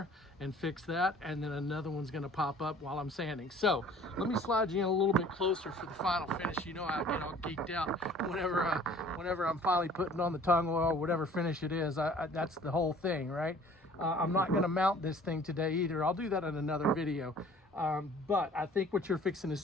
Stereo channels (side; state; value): both; normal; correlation 0.51